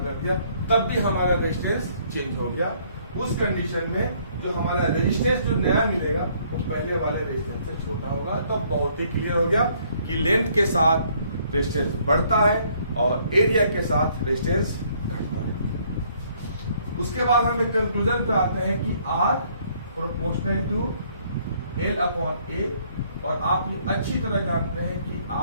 दिया, तब भी हमारा रेजिस्टेंस चेंज हो गया। उस कंडीशन में जो हमारा रेजिस्टेंस जो नया मिलेगा वो पहले वाले रेजिस्टेंस से छोटा होगा। तो बहुत ही क्लियर हो गया कि लेंथ के साथ रेजिस्टेंस बढ़ता है और एरिया के साथ रेजिस्टेंस घटता है। उसके बाद हम एक कंक्लूजन पे आते हैं कि R proportional to L upon A, और आप ये अच्छी तरह जानते हैं कि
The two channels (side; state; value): both; inverted; correlation -0.64